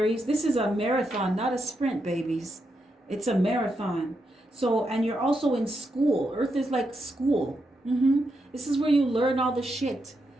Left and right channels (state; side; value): normal; both; correlation 0.83